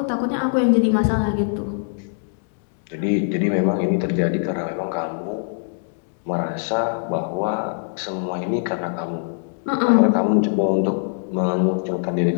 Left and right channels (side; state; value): right; silent; digital silence